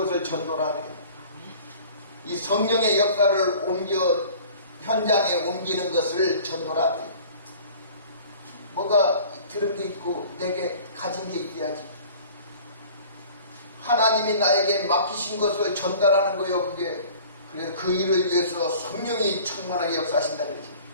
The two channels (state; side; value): inverted; both; correlation -0.46